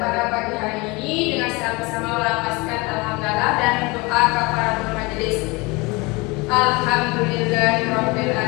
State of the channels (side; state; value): right; quieter; 25.6 dB